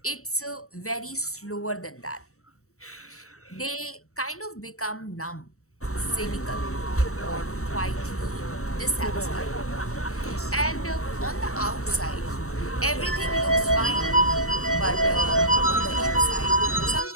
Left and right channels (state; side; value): late; right; 0.64 ms